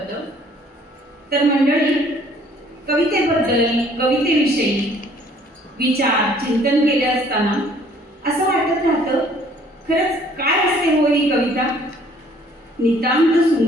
तर मंडळी, कवितेबद्दल, कवितेविषयी विचार चिंतन केले असताना असं वाटत राहतं, खरंच काय असते हो ही कविता? नितांत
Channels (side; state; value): both; normal; correlation 0.58